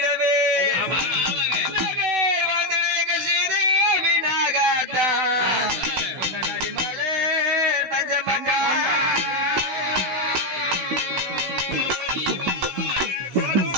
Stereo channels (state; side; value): late; left; 16 ms